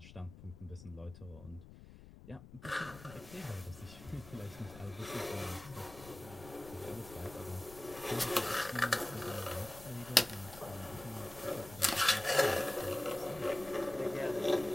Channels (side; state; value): left; noise; rumble, 17 dB below the sound